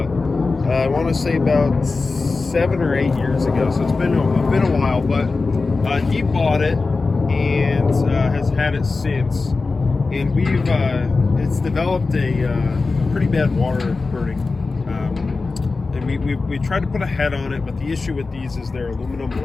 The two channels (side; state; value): right; quieter; 3.9 dB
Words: I want to say about 7 or 8 years ago. So it's been a while, but he bought it and has had it since. And it's developed a pretty bad water burning. And we tried to put a head on it, but the issue with these is they're aluminum